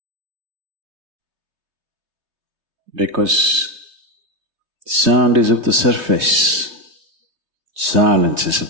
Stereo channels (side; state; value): left; late; 3.2 ms